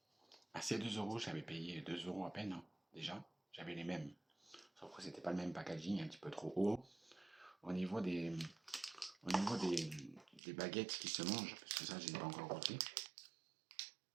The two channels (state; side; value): drops out; left; at 10.4 s